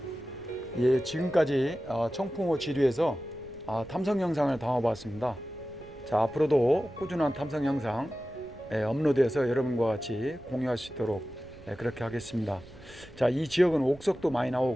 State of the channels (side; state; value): right; noise; rumble, 21 dB below the sound